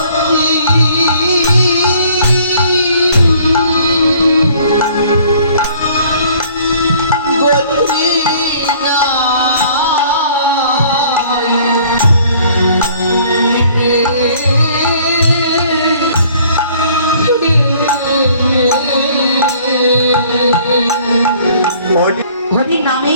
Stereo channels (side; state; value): both; inverted; correlation -0.56